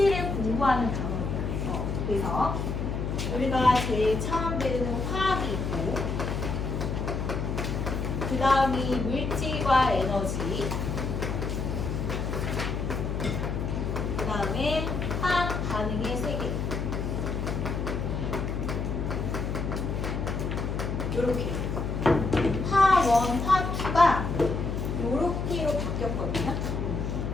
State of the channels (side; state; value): left; noise; hum, 2 dB below the sound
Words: 공부하는 단어입니다. 그래서 우리가 제일 처음 배우는 화학이 있고, 그 다음이 물질과 에너지, 그 다음에 화학 반응의 세계. 요렇게 화1, 화2가 요렇게로 바뀌었거든요.